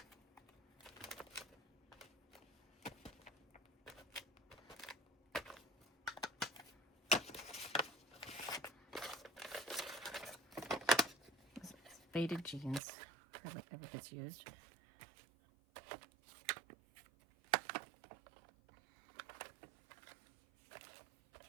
Faded jeans. Hardly ever gets used.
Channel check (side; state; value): left; drops out; at 12.8 s